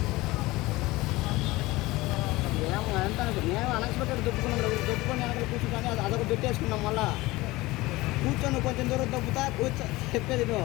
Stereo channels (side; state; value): right; quieter; 20.1 dB